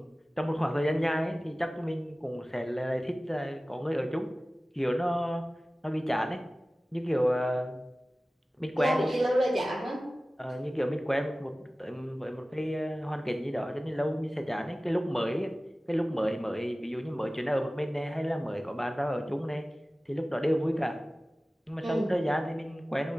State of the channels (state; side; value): normal; both; correlation 0.97